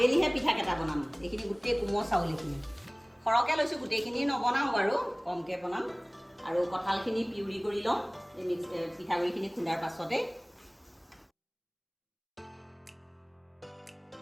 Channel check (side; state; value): both; identical; correlation 1.00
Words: পিঠাকেইটা বনাম। এইখিনি গোটেই কোমল চাউল, এইখিনি সৰহকৈ লৈছোঁ, গোটেইখিনি নবনাওঁ বাৰু, কমকৈ বনাম। আৰু কঁঠালখিনি পিউৰি কৰি লওঁ এই পিঠাগুড়িখিনি খুন্দাৰ পাছতে।